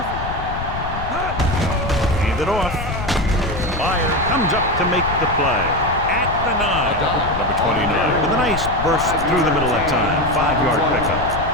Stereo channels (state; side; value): noise; left; rumble, 7 dB below the sound